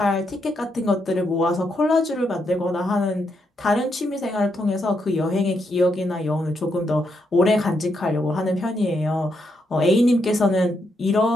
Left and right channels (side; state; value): both; normal; correlation 0.80